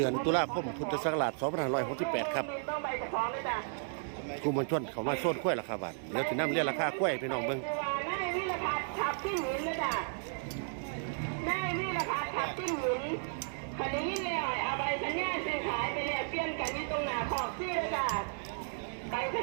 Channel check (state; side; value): silent; left; digital silence